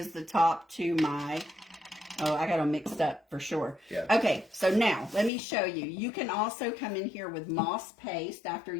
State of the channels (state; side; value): drops out; right; at 5.3 s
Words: the top to my, I got them mixed up for sure. Yeah. Okay, so now let me show you. You can also come in here with moss paste after